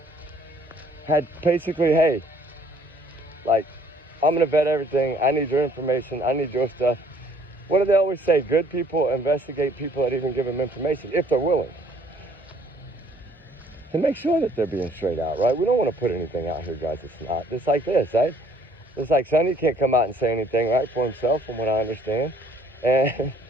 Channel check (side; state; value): both; normal; correlation 0.60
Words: had basically, hey, like, I'm going to vet everything. I need your information. I need your stuff. What do they always say? Good people investigate people that even give them information, if they're willing. To make sure that they're being straight out, right? We don't want to put anything out here, guys. It's not. Just like this, right? It's like Sonny can't come out and say anything, right, for himself, from what I understand. And,